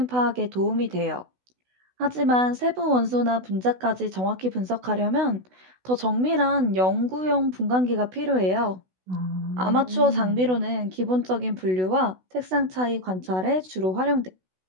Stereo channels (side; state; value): left; late; 16 ms